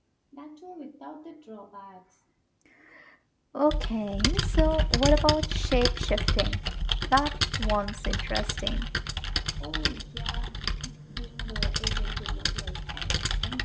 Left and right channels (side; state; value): both; identical; correlation 1.00